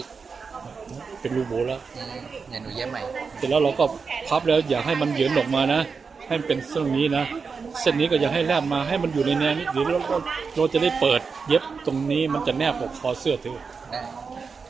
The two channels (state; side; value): quieter; left; 5.2 dB